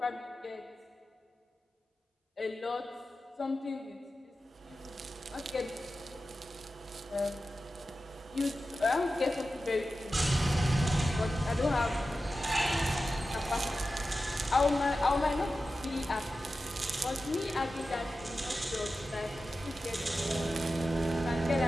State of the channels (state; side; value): normal; both; correlation 0.93